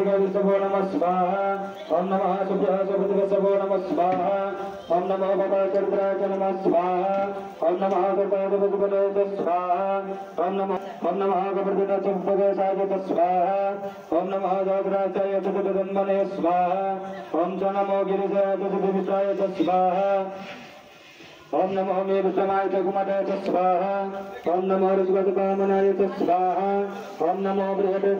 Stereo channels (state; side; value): identical; both; correlation 1.00